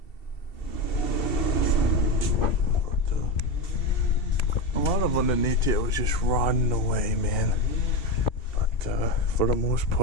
A lot of underneath here was just rotting away, man. But for the most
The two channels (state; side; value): late; right; 2.7 ms